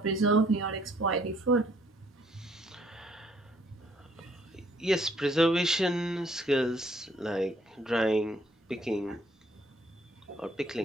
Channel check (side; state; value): both; normal; correlation 0.64